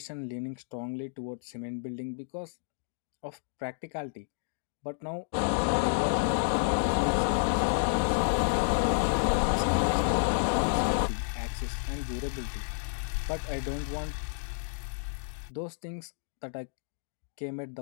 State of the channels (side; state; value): right; silent; digital silence